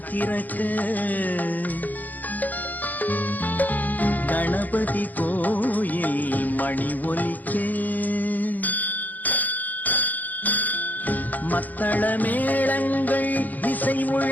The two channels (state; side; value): late; right; 0.082 ms